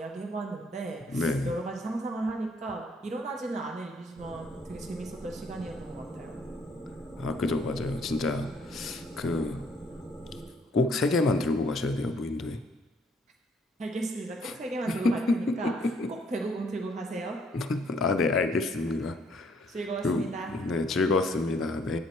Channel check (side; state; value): both; normal; correlation 0.65